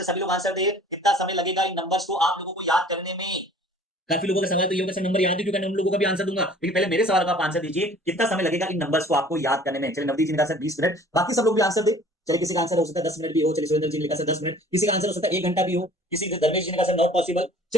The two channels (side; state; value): both; normal; correlation 0.50